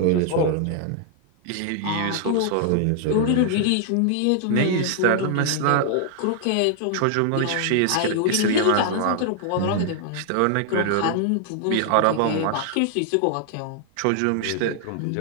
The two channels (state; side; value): different; both; correlation 0.00